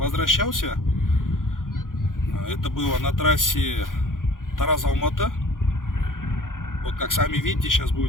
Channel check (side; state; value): right; late; 0.90 ms